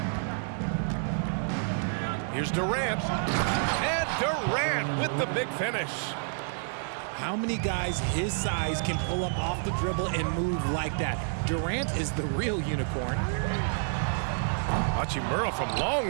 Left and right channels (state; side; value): silent; left; digital silence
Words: Here's Durant. And Durant with the big finish. How many guys his size can pull up off the dribble and move like that? Durant is the real unicorn. Hachimura from